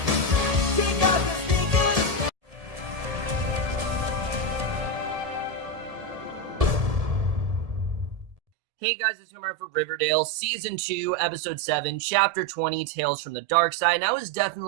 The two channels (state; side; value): late; left; 1.7 ms